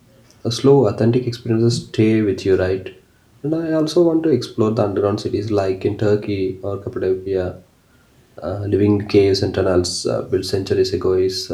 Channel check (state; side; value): identical; both; correlation 1.00